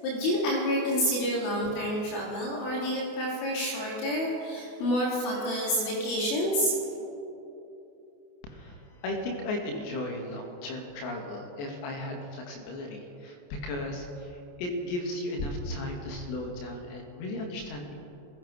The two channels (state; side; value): late; right; 28 ms